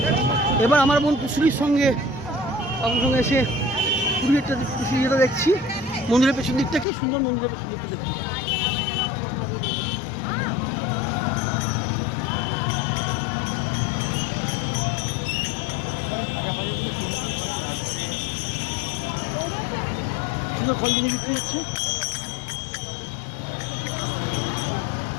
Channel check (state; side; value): drops out; right; at 6.9 s